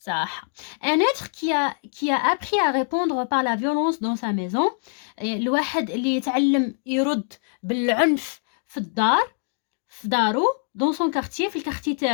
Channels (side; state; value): right; silent; 63 dB below the other